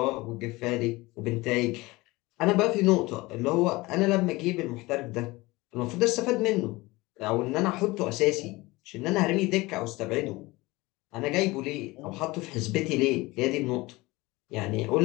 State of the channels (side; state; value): right; quieter; 21.5 dB